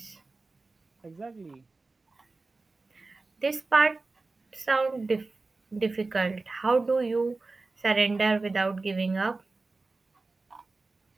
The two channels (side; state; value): left; quieter; 3.6 dB